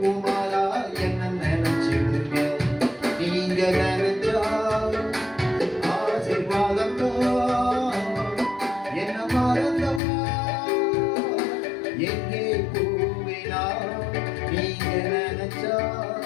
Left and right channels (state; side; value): drops out; right; at 10.0 s